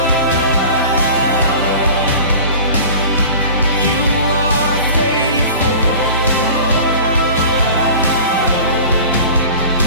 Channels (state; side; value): inverted; both; correlation -0.39